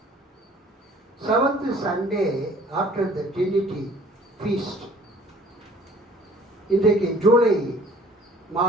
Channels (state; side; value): normal; both; correlation 0.53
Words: 7th Sunday after the Trinity Feast, இன்றைக்கு ஜூலை